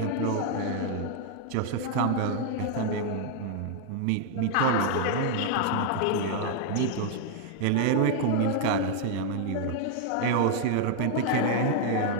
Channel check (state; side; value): different; both; correlation 0.00